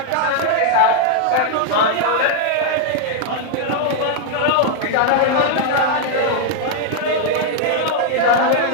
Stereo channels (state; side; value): different; both; correlation 0.00